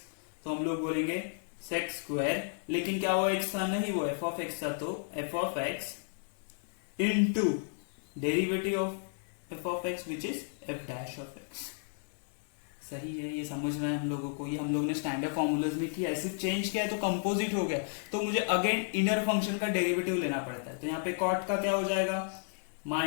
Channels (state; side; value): silent; right; 56 dB below the other